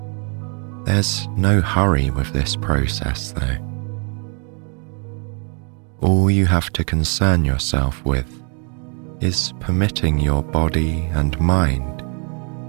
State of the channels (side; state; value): left; quieter; 39.2 dB